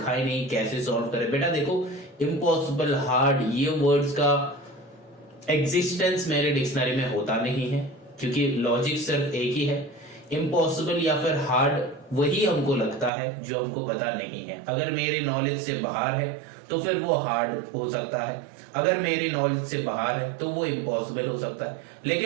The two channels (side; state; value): left; drops out; at 13.1 s